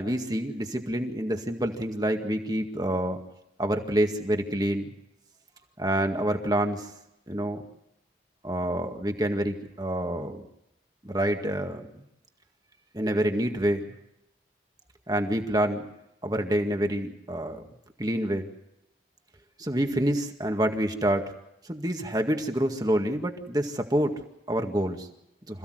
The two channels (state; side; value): normal; both; correlation 0.75